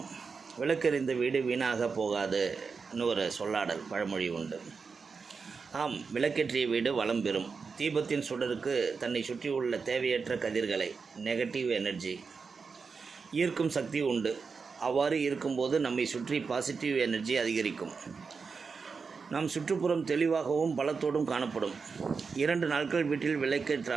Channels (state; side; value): quieter; left; 5.1 dB